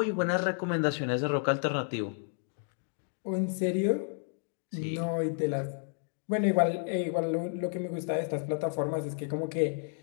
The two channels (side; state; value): right; silent; 57 dB below the other